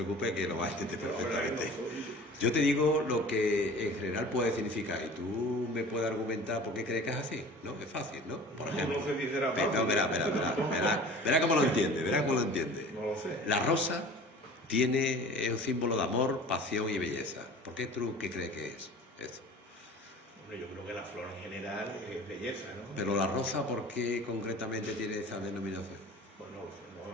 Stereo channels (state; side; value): normal; both; correlation 0.42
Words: que lo vas a entender perfectamente. Yo te digo lo que en general puede significar y tú me puedes argumentar por qué crees que es así, ¿no? Es fácil, ¿no? Por ejemplo. No sé si será fácil. No, verá cómo lo entiende, No lo sé. La rosa es un símbolo de amor, pasión y belleza. ¿Por qué tú qué crees que es eso? Hombre, yo creo que la flor en general es belleza, ¿no? Pero la rosa, ¿por qué concretamente tiene esa denominación? Pues no